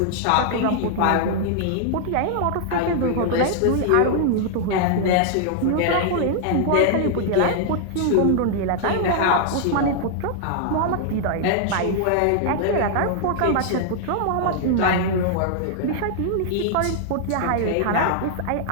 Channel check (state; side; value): different; both; correlation -0.01